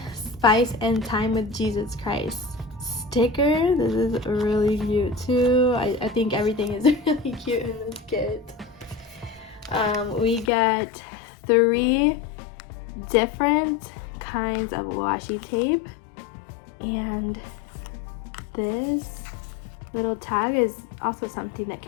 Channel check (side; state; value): right; drops out; at 10.5 s